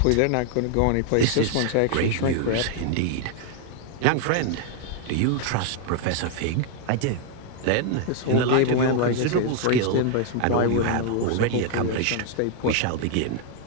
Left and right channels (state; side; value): different; both; correlation 0.00